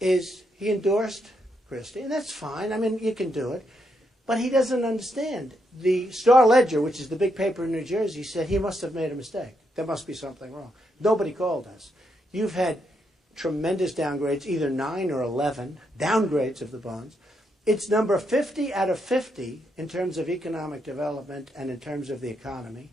he endorsed Christie, and that's fine. I mean, you can do it. But he doesn't understand. The Star-Ledger, which is the big paper in New Jersey, said he must have made a mistake. There must be something wrong. Nobody called us. You've had tremendous downgrades, either 9 or 11 downgrades of the bonds. It's number 50 out of 50 in terms of economic development and in terms of the economy.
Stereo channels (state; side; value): normal; both; correlation 0.79